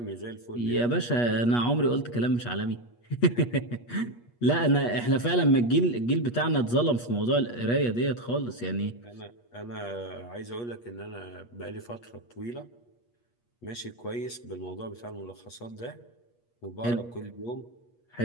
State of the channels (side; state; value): right; late; 8.4 ms